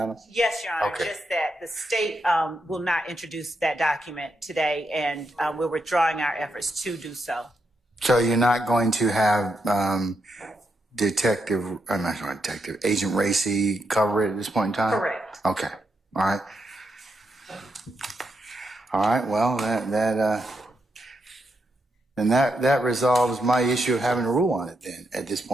Yes, Your Honor, Okay. just that the state will not introduce that document today, and we're withdrawing our efforts to do so. So you're not going to have Agent Racy cover it at this point in time? Correct. Okay. All right. All right. Well, that resolves my issue of having a rule on it then at this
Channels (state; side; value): normal; both; correlation 0.82